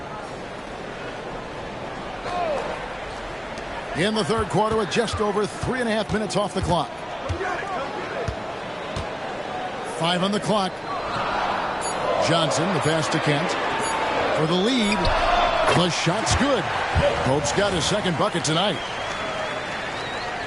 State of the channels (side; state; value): both; identical; correlation 1.00